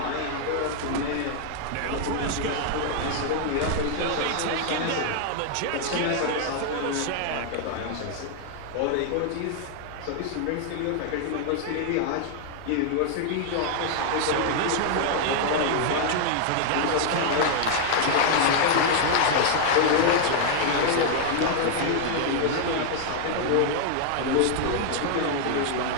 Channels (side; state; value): both; different; correlation 0.00